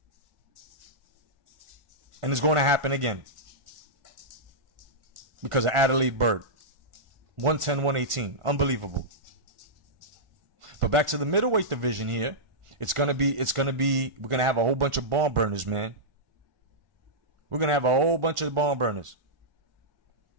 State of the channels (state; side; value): late; left; 1.4 ms